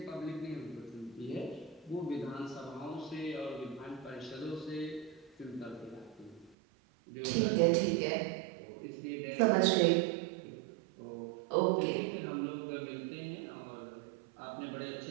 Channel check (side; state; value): left; drops out; at 6.6 s